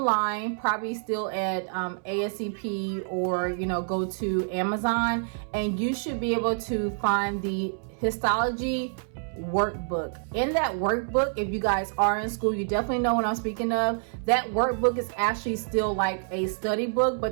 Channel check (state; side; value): silent; left; 60 dB below the other